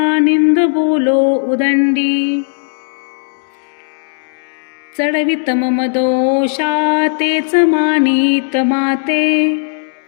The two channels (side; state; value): right; silent; digital silence